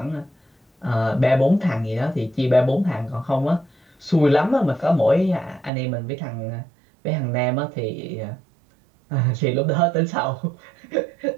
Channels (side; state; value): left; drops out; at 5.7 s